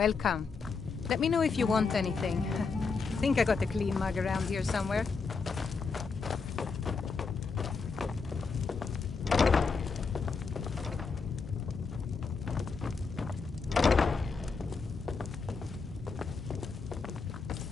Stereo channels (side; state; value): right; quieter; 4.8 dB